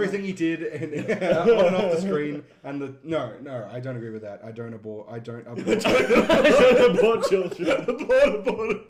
he did on and off the screen. And the no, I don't agree with that. I don't abort. I don't abort. I don't abort children.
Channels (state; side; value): identical; both; correlation 1.00